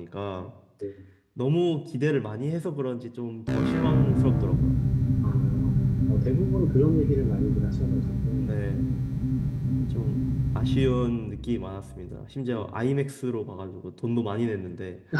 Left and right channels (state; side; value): identical; both; correlation 1.00